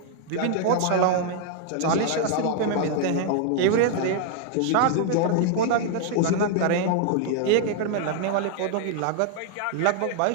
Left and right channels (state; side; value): different; both; correlation 0.00